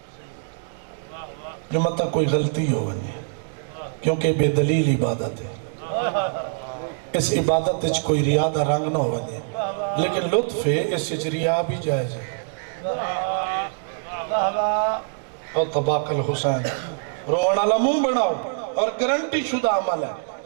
جو مطلب کوئی غلطی ہو ونجے، کیونکہ بے دلیل عبادت ہے. اس عبادت اچھ کوئی ریادہ رنگ نہ ہو ونجے، لیکن لطف ہے اس اچھ ریا بھی جائز ہے. اور طباق الحسین روان علا منہ بناؤ اور گرنٹی شدہ عمل ہے.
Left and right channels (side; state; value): left; silent; digital silence